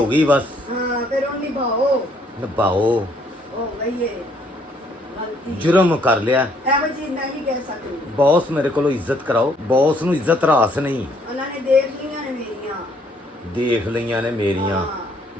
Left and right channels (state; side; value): normal; both; correlation 0.66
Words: ਗਈ ਬਸ। ਹਾਂ ਫਿਰ ਉਹ ਨਿਭਾਓ ਉਹ ਗਈ ਏ ਗਲਤੀ, ਜੁਰਮ ਕਰ ਲਿਆ। ਇਹੋ ਚੀਜ਼ ਮੈਂ ਵੀ ਕਹਿ ਸਕਦੀ। ਬੌਸ ਮੇਰੇ ਕੋਲੋਂ ਇੱਜ਼ਤ ਕਰਾਓ। ਬੌਸ ਨੂੰ ਇੱਜ਼ਤ ਰਾਸ ਨਹੀਂ। ਉਹਨਾਂ ਨੇ ਦੇਖ ਲਈਆਂ ਨੇ ਮੇਰੀਆਂ।